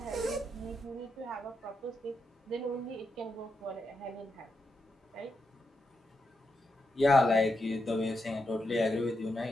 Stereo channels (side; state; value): both; normal; correlation 0.84